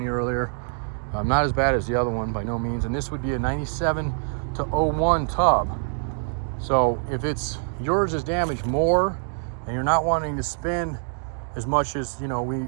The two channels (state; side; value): silent; left; digital silence